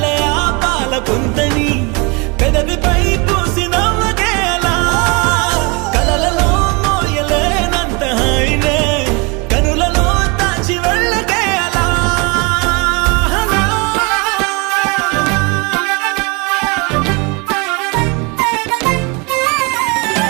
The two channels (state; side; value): quieter; left; 29.4 dB